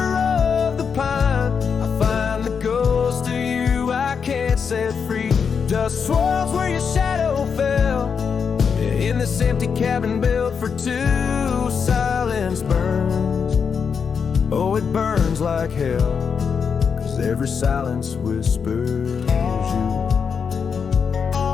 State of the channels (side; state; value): right; quieter; 6.3 dB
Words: the pine, I find the ghost of you I can't set free. Dust swirls where your shadow fell, in this empty cabin built for two. Silence burns, oh it burns like hell, 'cause every silence whispers you.